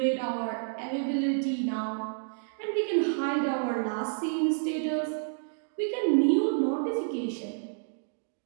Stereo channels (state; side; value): silent; left; digital silence